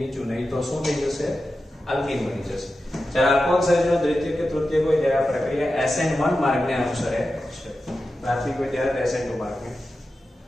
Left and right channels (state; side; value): normal; both; correlation 0.92